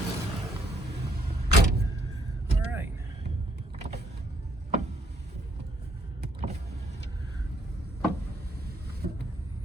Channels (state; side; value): normal; both; correlation 0.68